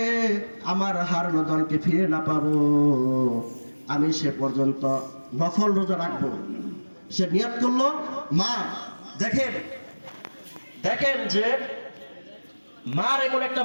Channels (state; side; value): inverted; both; correlation -1.00